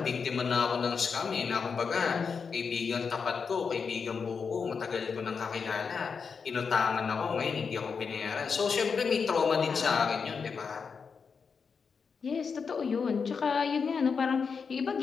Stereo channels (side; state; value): right; quieter; 5.7 dB